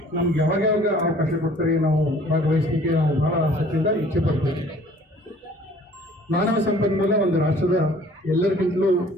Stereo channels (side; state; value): both; normal; correlation 0.53